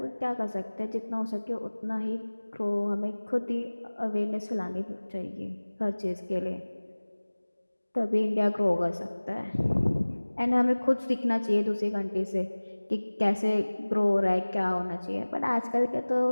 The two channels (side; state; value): both; inverted; correlation -1.00